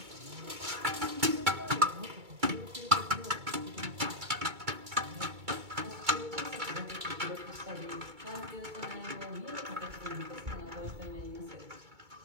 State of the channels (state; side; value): late; left; 2.2 ms